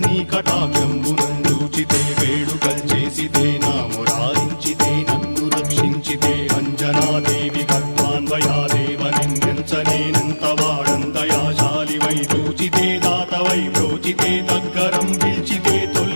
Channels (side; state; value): both; inverted; correlation -1.00